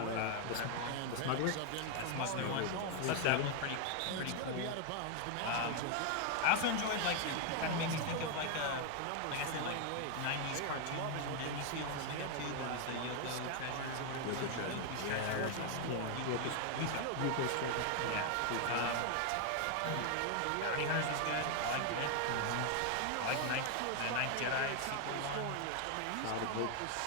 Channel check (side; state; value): both; different; correlation 0.00